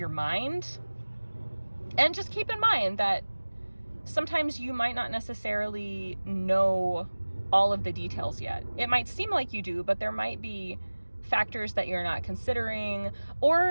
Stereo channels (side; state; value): both; inverted; correlation -1.00